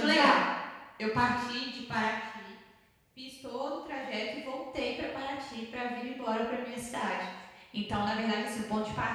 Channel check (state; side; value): identical; both; correlation 1.00